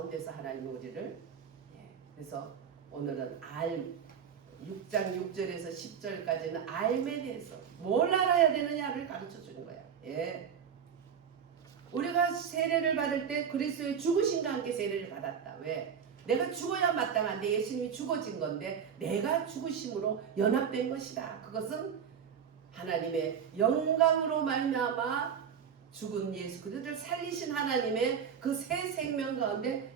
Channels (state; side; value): quieter; left; 7.5 dB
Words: 하나님은 우리를 그래서 오늘은 6장 6절에서 10절까지는 알에 대해서 뭘 알아야 되느냐를 가르쳐 주는 거야. 예. 우리가 세례를 받을 때 그리스도의 죽으심과 함께 세례를 받았다. 왜? 내가 죽어야 마땅한데 예수님이 죽어진 건데 내가 죽으심으로 연합된 것이다. 그것은 하나님의 영광으로 말미암아 죽은 예수 그리스도를 살리신 하나님의 그 새 생명 가운데